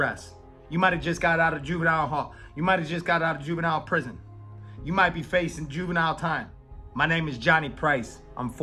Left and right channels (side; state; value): both; identical; correlation 1.00